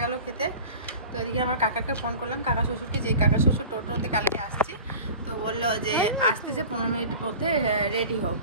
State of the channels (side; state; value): both; inverted; correlation -0.39